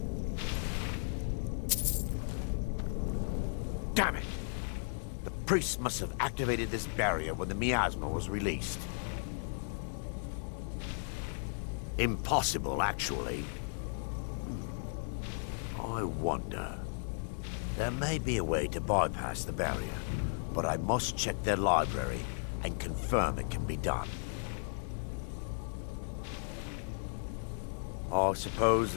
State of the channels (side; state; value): right; silent; 54 dB below the other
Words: Damn it! The priests must have activated this barrier when the miasma was released. Impossible, actually. I wonder. There may be a way to bypass the barrier, but I must check their library and confirm it can be done. I suppose